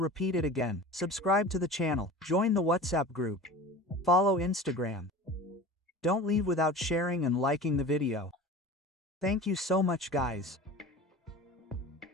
it again. Subscribe to the channel, join the WhatsApp group, follow Instagram. Don't leave without sharing and liking the video. Thank you so much guys.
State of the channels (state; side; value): normal; both; correlation 0.37